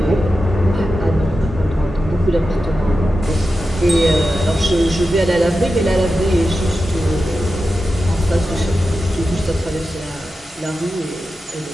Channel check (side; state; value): both; normal; correlation 0.91